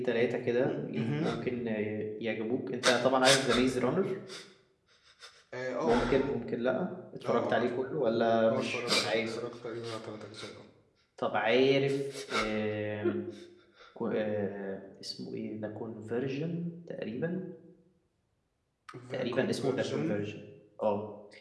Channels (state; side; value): identical; both; correlation 1.00